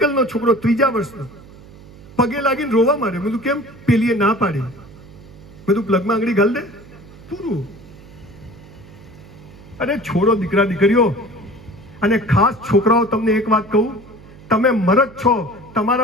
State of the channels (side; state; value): right; noise; hum, 20 dB below the sound